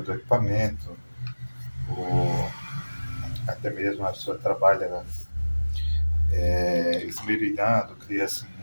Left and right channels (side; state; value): both; inverted; correlation -1.00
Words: do equipamento, ou até mesmo a pessoa trabalha esmerilhando, cria-se